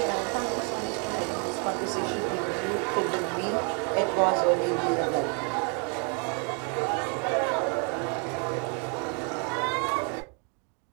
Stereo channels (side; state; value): left; quieter; 37.5 dB